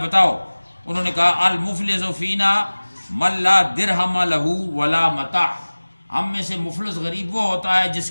انہوں نے کہا المفلس فینا من لا درہم لہ ولا متاع، ہم میں سے مفلس غریب وہ ہوتا ہے جس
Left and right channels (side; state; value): both; inverted; correlation -1.00